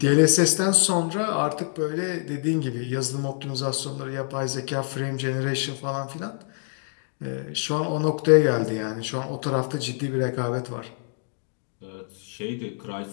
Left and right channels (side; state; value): right; silent; digital silence